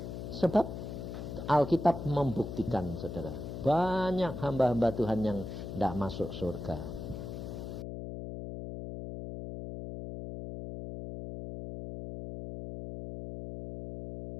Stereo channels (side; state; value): left; noise; hum, 7 dB below the sound